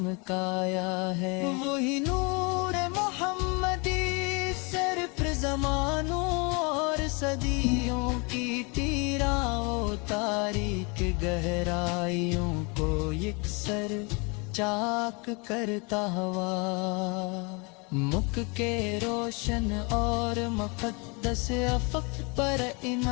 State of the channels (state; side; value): quieter; right; 30.6 dB